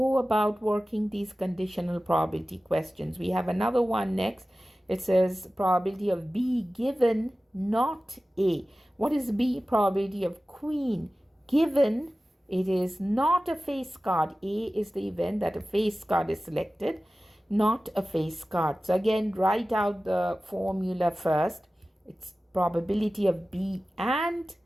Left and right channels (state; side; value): normal; both; correlation 0.96